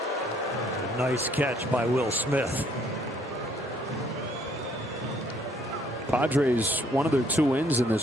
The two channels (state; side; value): normal; both; correlation 0.64